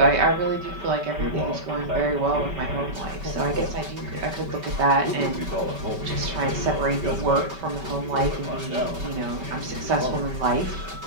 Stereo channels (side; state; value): left; late; 5.2 ms